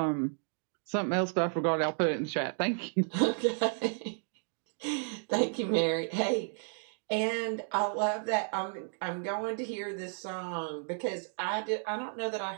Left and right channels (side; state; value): left; silent; 56 dB below the other